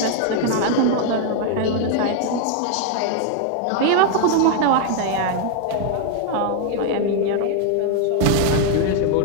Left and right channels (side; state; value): both; different; correlation 0.00